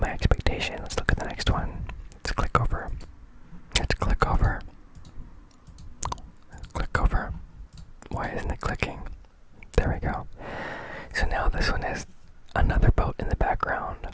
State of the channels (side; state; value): both; identical; correlation 1.00